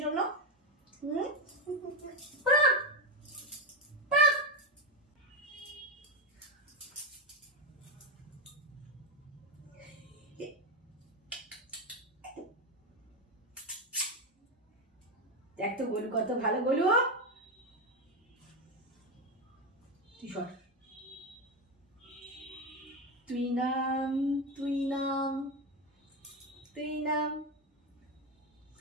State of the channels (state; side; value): normal; both; correlation 0.12